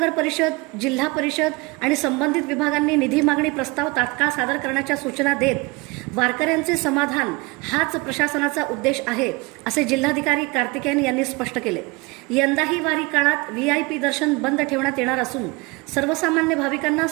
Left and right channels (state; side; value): quieter; left; 25.6 dB